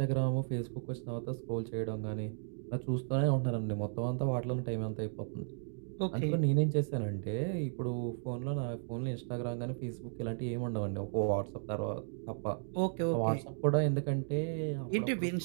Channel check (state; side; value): silent; left; digital silence